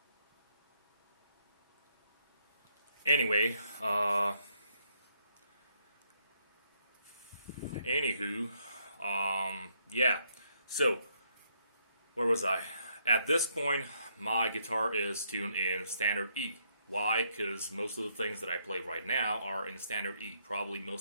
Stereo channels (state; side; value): inverted; both; correlation -0.73